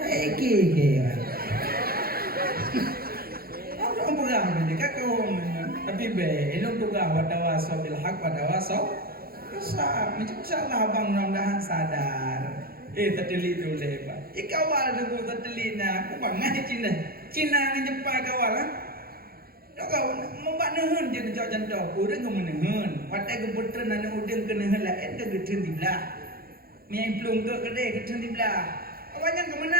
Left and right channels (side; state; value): left; late; 0.44 ms